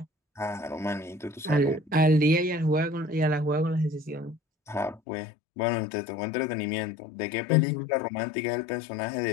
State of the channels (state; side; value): drops out; right; at 5.0 s